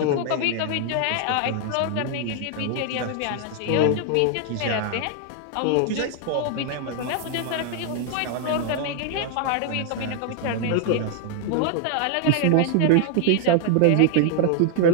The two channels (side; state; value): both; different; correlation 0.00